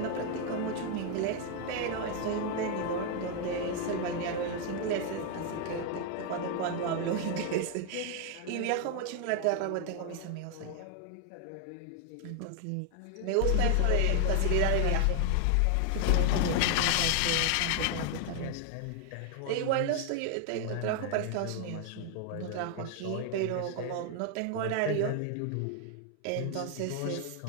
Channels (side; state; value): both; different; correlation 0.00